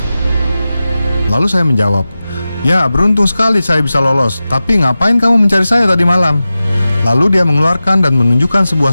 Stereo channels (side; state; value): both; inverted; correlation -0.95